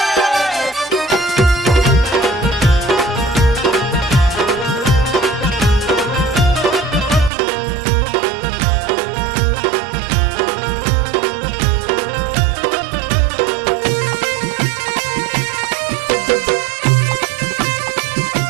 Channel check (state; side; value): drops out; left; at 7.3 s